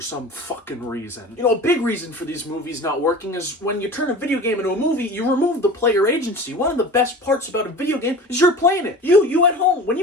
some fucking reason. You know, a big reason for these movies not working is when you turn a video game into a movie, you remove the player agency. One of the best parts about a video game is you're playing it. You at home, when you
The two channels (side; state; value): both; normal; correlation 0.37